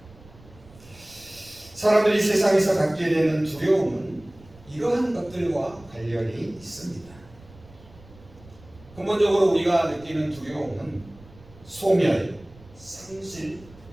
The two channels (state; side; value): noise; right; rumble, 23 dB below the sound